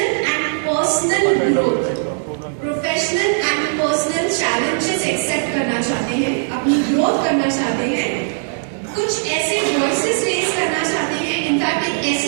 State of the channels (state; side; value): silent; left; digital silence